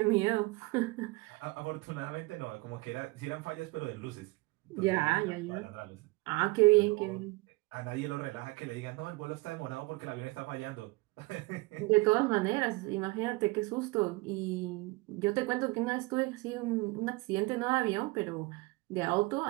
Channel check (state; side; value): quieter; left; 23.4 dB